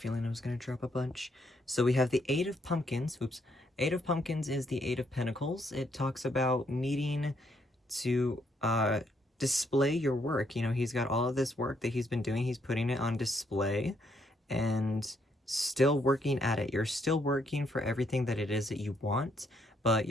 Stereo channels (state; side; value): normal; both; correlation 0.73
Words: I was going to drop a bunch. So we have the Eight of Pumpkins. Oops. Eight of Pumpkins is the Eight of Pentacles. It talks about needing to display your work. You know, he's got all of this work that he's been doing. He's putting it on display and still working at it. You're still working for everything that it is that you want, but